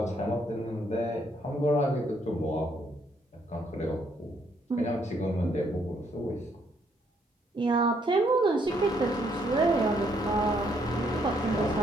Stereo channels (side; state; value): both; normal; correlation 0.71